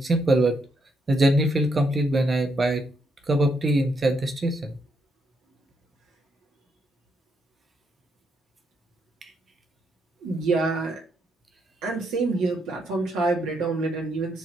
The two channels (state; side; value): normal; both; correlation 0.77